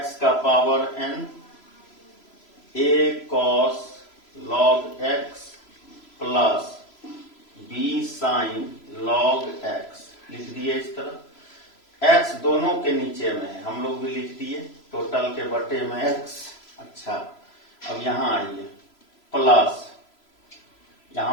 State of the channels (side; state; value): right; late; 3.0 ms